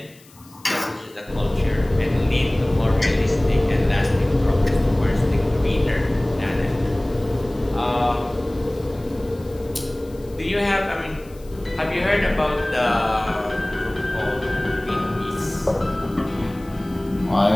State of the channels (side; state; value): left; noise; hiss, 26 dB below the sound